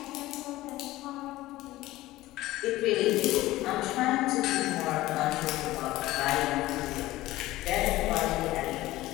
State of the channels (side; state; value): right; quieter; 17.1 dB